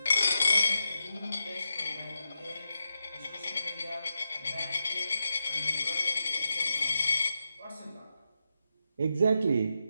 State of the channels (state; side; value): inverted; both; correlation -0.87